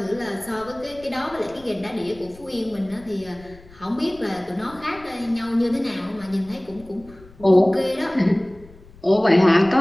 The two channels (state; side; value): noise; left; rumble, 23 dB below the sound